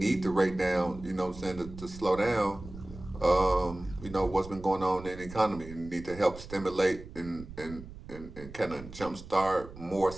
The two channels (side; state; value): right; noise; rumble, 14 dB below the sound